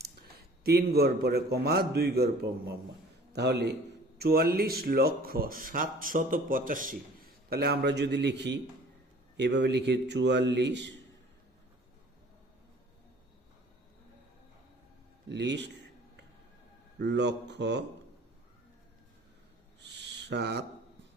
3 ঘর পরে কমা 2 ঘর কমা, তাহলে 44,785। তাহলে আমরা যদি লিখি এভাবে লিখি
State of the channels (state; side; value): normal; both; correlation 0.49